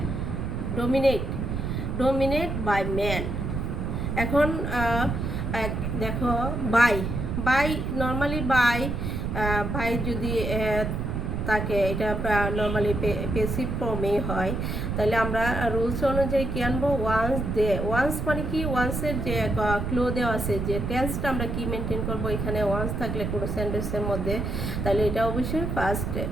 dominate by man. এখন দেখো বাই নর্মালি বাই যদি তাকে এটা নর্মালি পেসিভ ফর্মে হয়, তাহলে আমরা রুলস অনুযায়ী কী আনবো, ওয়ান্স মানে কি, ওয়ান্সের যে ক্লো দেওয়া আছে, যে টেন্সটা আমরা কি মেনটেন করবো, এখানে ওয়ান্স থাকলে কোনো সেন্টেন্সের মধ্যে, তাহলে এটা অবশ্যই ফার্স্ট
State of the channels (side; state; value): right; noise; rumble, 2 dB below the sound